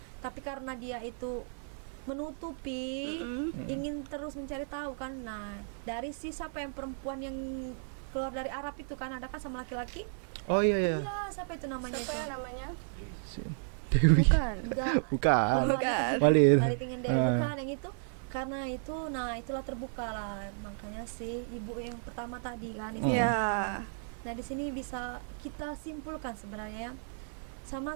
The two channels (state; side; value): silent; left; 55 dB below the other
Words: Tapi karena dia itu menutupi, ingin terus mencari tahu kan. Nah, dari si siapa yang perempuan yang keluar dari Arab itu kan, ada kan sama laki-laki? Oh iya iya. Iya, siapa itu namanya itu? Dewi. Enggak. Bukan. Oh, Walid. Walid. Walid dengan Dewi, Ah. bukan yang itu. Karena itu, nah itulah terbuka lah. Makanya sih ibu yang pertama tadi kan istrinya. Nah, di sini bisa kita simpulkan sebenarnya ya. Sama